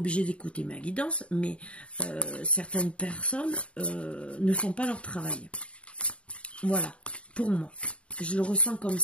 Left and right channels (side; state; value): right; late; 0.060 ms